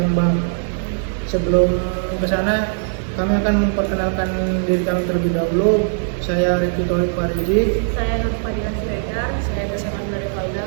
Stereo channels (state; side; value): silent; left; digital silence